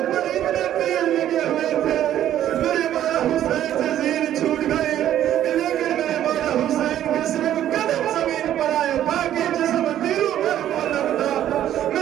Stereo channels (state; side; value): quieter; left; 11.6 dB